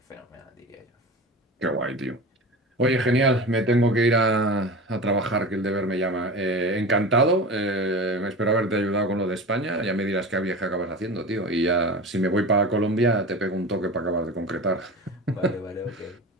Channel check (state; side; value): normal; both; correlation 0.31